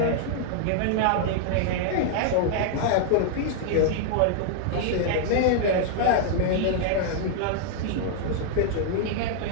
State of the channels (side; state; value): both; different; correlation -0.01